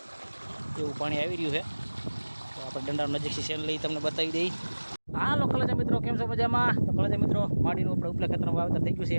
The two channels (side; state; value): both; inverted; correlation -1.00